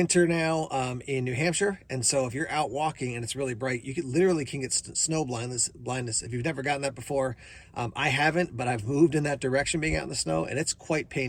now in New Hampshire, and so if you're out walking and it's really bright, you literally can get snow blindness. If you've never gotten that before, I haven't, but I've moved in that direction being out in the snow, and it's quite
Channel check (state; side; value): identical; both; correlation 1.00